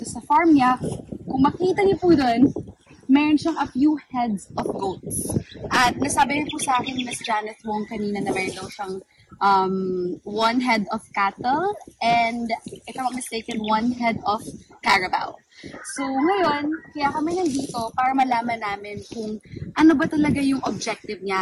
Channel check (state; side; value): identical; both; correlation 1.00